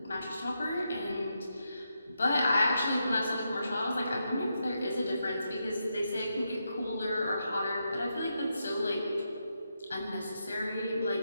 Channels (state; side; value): inverted; both; correlation -0.84